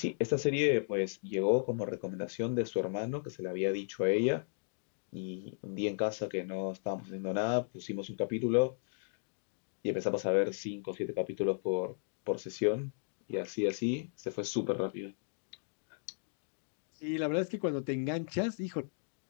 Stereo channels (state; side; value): silent; right; digital silence